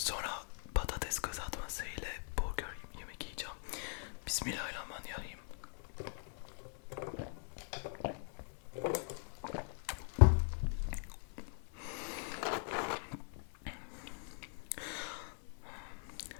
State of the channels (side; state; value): right; silent; 50 dB below the other